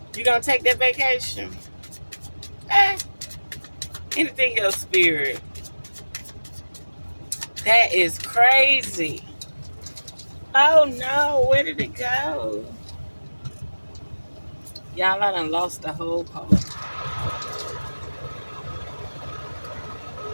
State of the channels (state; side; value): inverted; both; correlation -1.00